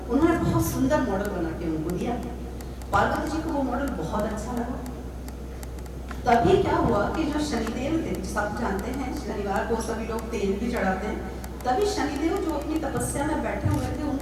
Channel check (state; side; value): identical; both; correlation 1.00